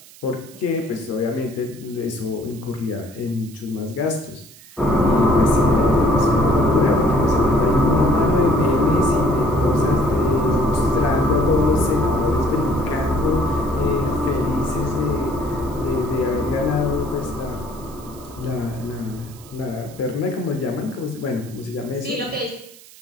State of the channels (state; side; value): noise; right; hiss, 22 dB below the sound